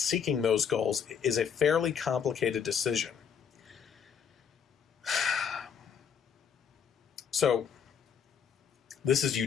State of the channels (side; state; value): right; quieter; 7.4 dB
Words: those goals is a fairly complicated decision." So, this is